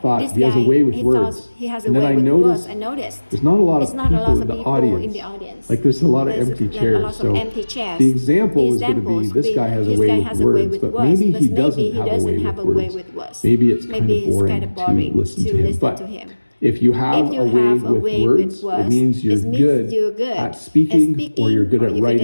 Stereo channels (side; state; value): both; inverted; correlation -1.00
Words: thought, he has a way with words. And then I noticed there's not a lot of people in the audience. Like there's a lot of empty chairs. So the example is going to be this guy has a way with words, but maybe he doesn't have a way with words. Maybe it's kind of boring to listen to him. If you have a way with words, it means you're good at speaking or you're good at